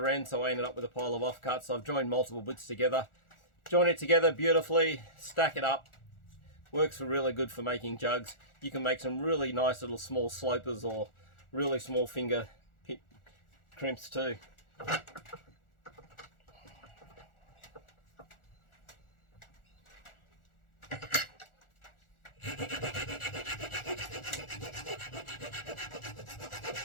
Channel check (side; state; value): right; late; 1.4 ms